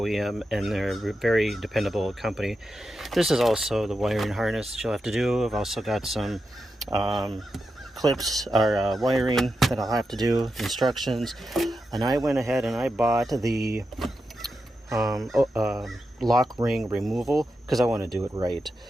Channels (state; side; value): normal; both; correlation 0.88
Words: and they're a very dependable company. This is also the wiring harness that you'll have to do. I've also got some clips or wiring that I'll have to do, instructions. And I went ahead and I bought the lock ring removal because I want to do it right.